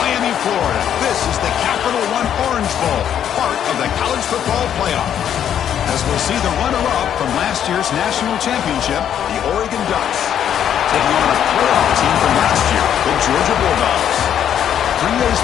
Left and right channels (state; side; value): quieter; right; 9.6 dB